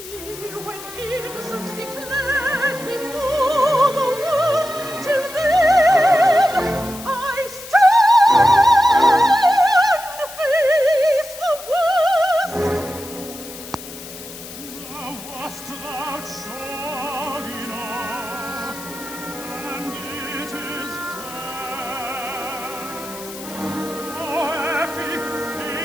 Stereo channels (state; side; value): noise; left; hiss, 14 dB below the sound